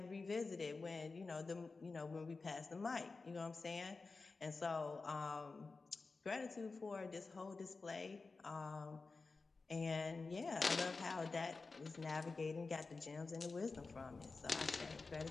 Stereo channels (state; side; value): quieter; right; 4.0 dB